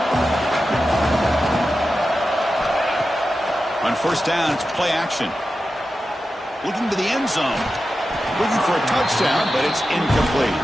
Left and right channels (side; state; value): both; normal; correlation 0.92